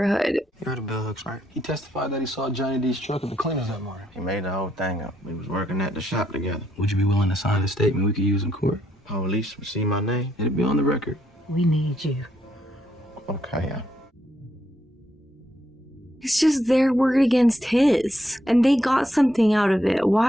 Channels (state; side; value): normal; both; correlation 0.75